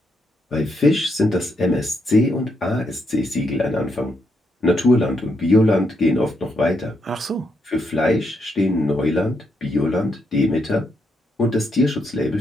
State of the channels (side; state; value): both; normal; correlation 0.79